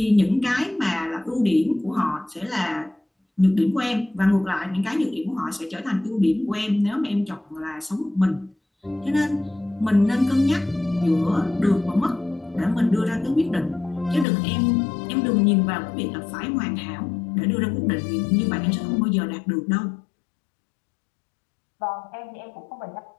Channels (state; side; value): drops out; right; at 14.2 s